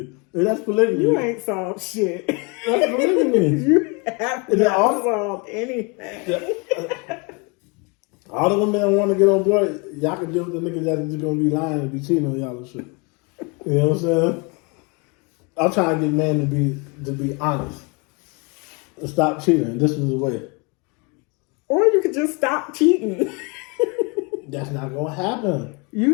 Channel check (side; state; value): right; quieter; 31.1 dB